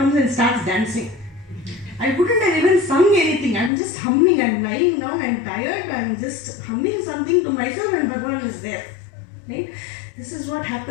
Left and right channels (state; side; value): drops out; right; at 3.7 s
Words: and starts dancing. I wouldn't have even sung anything. I'm just humming. I'm lying down. I'm tired. I'm just humming something to myself and Bhagavan is there. Right? This is what